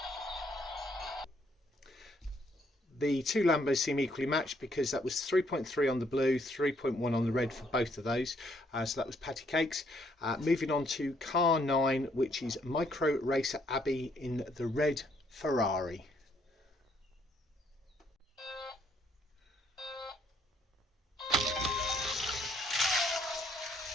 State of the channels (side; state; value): both; normal; correlation 0.69